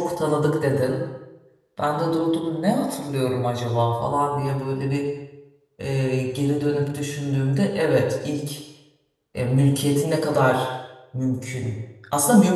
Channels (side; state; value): both; identical; correlation 1.00